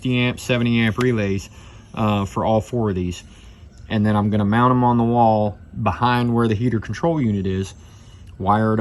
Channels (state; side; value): identical; both; correlation 1.00